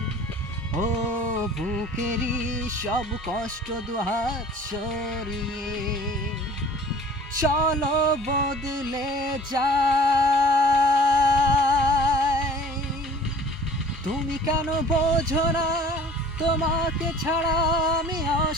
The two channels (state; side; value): normal; both; correlation 0.48